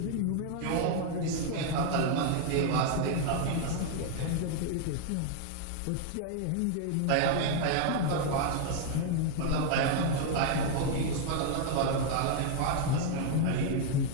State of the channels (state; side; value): different; both; correlation 0.00